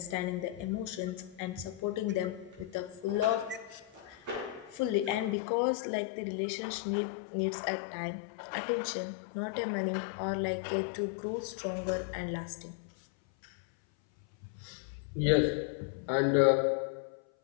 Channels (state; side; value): drops out; right; at 5.4 s